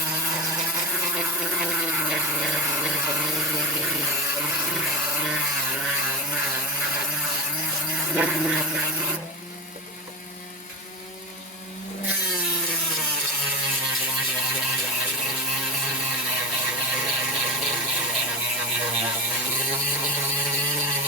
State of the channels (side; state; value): both; normal; correlation 0.20